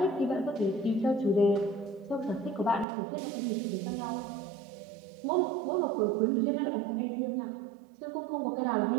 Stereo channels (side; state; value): left; drops out; at 2.9 s